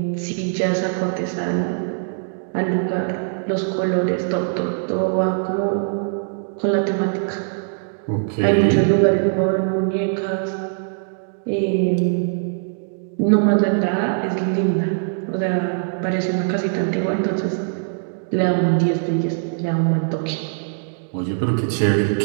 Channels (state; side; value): silent; left; digital silence